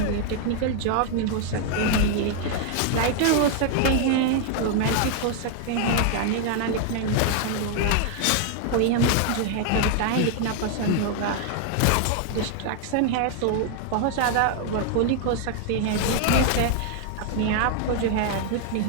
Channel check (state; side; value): different; both; correlation 0.00